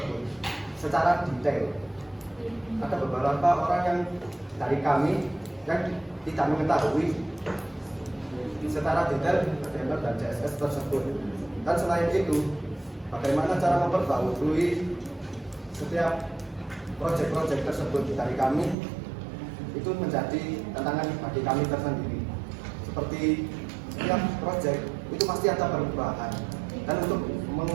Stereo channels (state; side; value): drops out; left; at 18.8 s